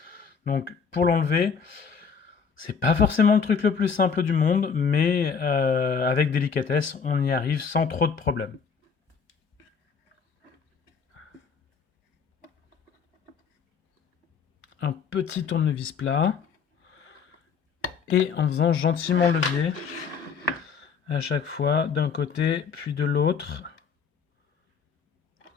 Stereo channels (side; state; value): right; quieter; 6.0 dB